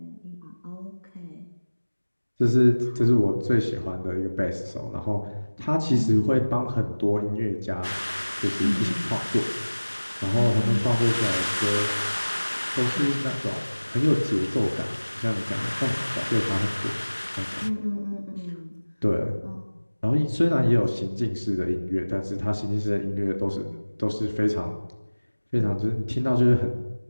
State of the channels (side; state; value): both; inverted; correlation -1.00